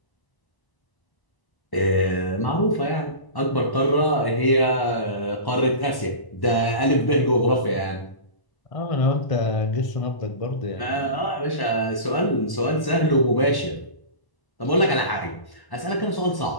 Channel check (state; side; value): late; right; 1.1 ms